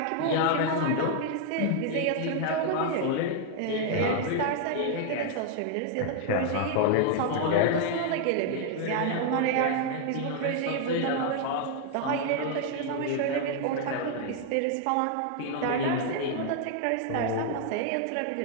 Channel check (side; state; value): both; different; correlation 0.00